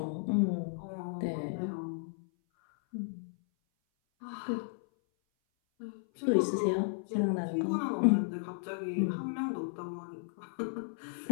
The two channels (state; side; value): silent; right; 55 dB below the other